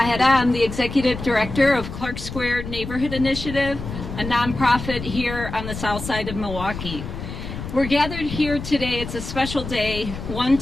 I'm the Executive Director of Clark Square Neighborhood Initiative, a nonprofit here on the south side of Milwaukee. We're gathered here today. It's a special day, one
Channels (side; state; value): left; noise; rumble, 8 dB below the sound